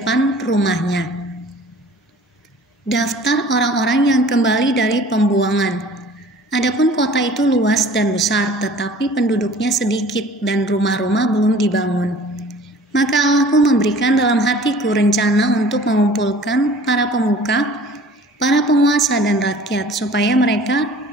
rumahnya. Daftar orang-orang yang kembali dari pembuangan. Adapun kota itu luas dan besar, tetapi penduduknya sedikit dan rumah-rumah belum dibangun. Maka Allahku memberikan dalam hatiku rencana untuk mengumpulkan para pemuka, para penguasa dan rakyat, supaya mereka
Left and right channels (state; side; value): normal; both; correlation 0.48